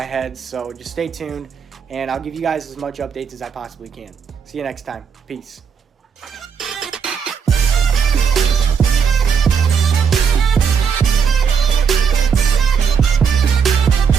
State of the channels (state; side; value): quieter; left; 6.6 dB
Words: head, so just stay tuned, and I'll give you guys as much updates as I possibly can. See you next time. Peace.